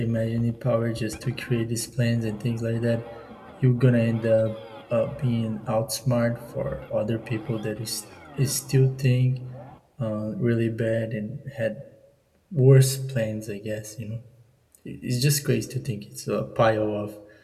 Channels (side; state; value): both; identical; correlation 1.00